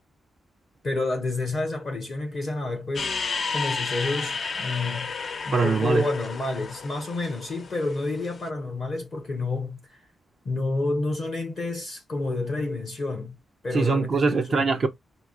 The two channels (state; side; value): normal; both; correlation 0.84